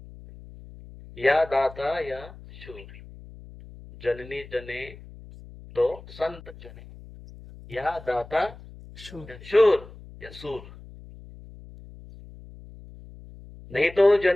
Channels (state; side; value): noise; left; hum, 18 dB below the sound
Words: या दाता या शूर। जननी जने तो संत जने, या दाता शूर। या शूर, या सूर। नहीं तो